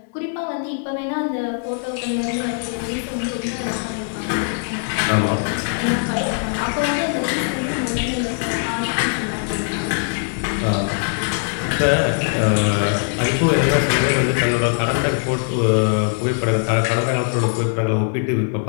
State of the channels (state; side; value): silent; right; 62 dB below the other